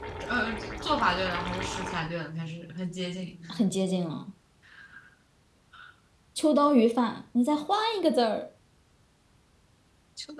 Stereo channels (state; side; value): identical; both; correlation 1.00